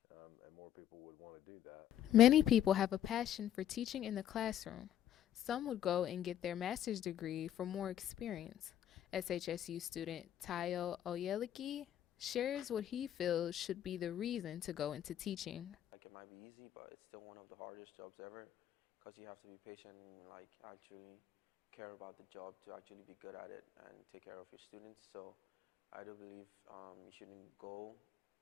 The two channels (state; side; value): quieter; right; 11.2 dB